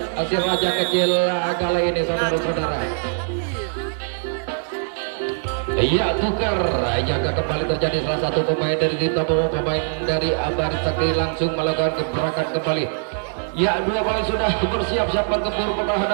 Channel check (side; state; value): left; silent; digital silence